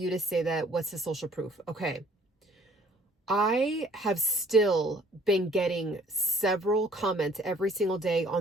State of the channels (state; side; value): normal; both; correlation 0.58